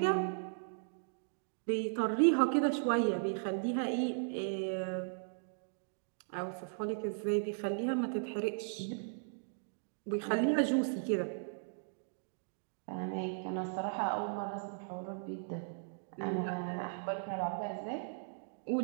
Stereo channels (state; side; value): silent; left; digital silence